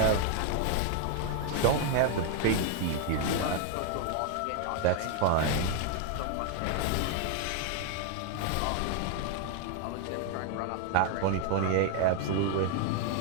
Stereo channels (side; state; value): both; different; correlation 0.00